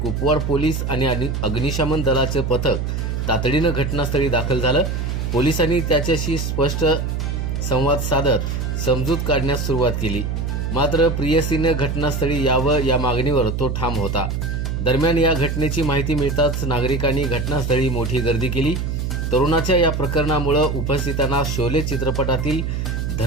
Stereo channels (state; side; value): noise; right; hum, 2 dB below the sound